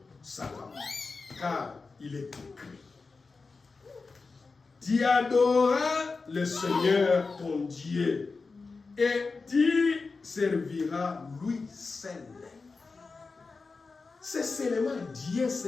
Satan, car il est écrit, tu adoreras le Seigneur ton Dieu et tu serviras lui seul. C'est seulement Dieu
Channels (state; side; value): quieter; right; 4.2 dB